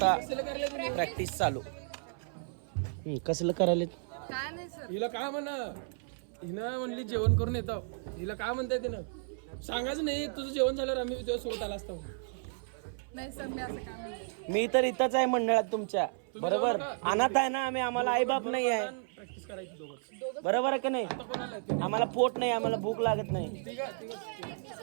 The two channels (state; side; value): silent; left; 56 dB below the other